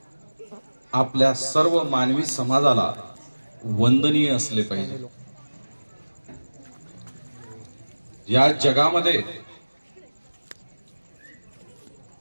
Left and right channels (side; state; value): both; inverted; correlation -1.00